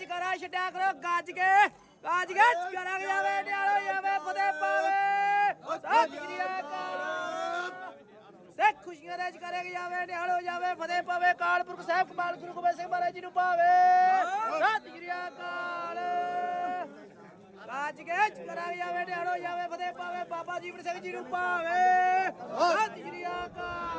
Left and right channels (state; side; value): identical; both; correlation 1.00